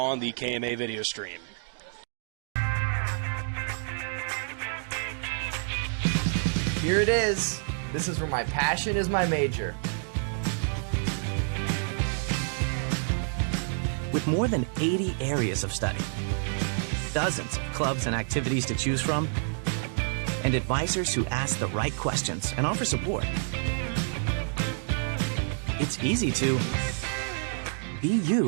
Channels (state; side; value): silent; left; digital silence